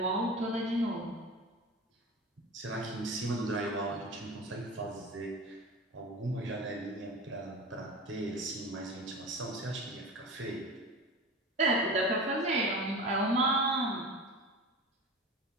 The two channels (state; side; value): normal; both; correlation 0.32